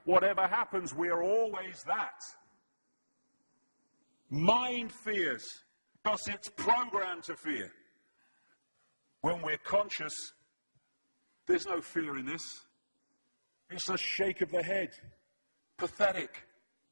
Whatever happens, we are always that. Mind fears, because it's programmed to fear. When we're conscious, there's no fear in this. It's a shake of the head. Pathetic.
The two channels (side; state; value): both; inverted; correlation -1.00